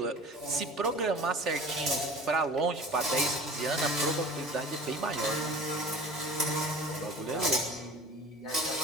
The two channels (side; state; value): both; normal; correlation 0.42